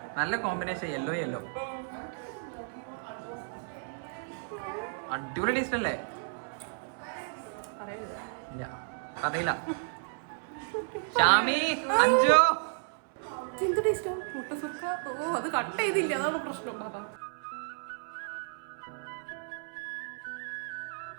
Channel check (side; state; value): left; silent; 56 dB below the other